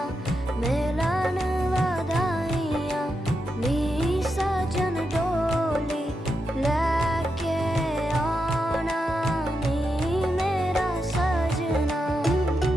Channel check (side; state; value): both; normal; correlation 0.86